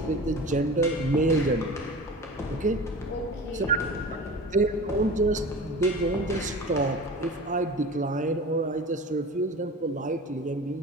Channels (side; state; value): both; normal; correlation 0.35